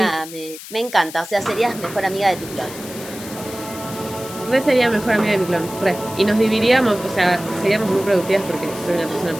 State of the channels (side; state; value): left; noise; hiss, 14 dB below the sound